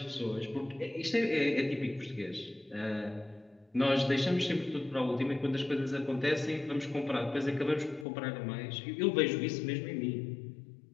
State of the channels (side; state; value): right; drops out; at 8.1 s